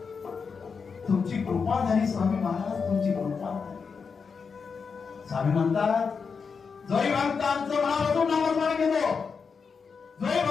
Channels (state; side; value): quieter; right; 5.5 dB